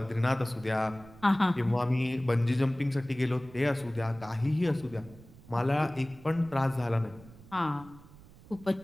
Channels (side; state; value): right; noise; rumble, 21 dB below the sound